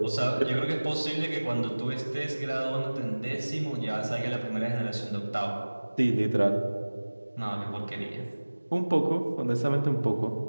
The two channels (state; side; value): inverted; both; correlation -1.00